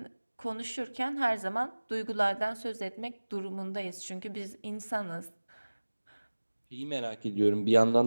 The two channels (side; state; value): both; inverted; correlation -1.00